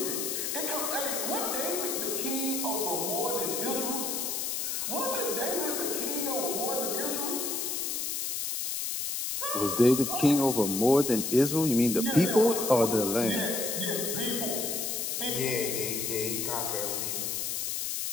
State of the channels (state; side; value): noise; left; hiss, 1 dB below the sound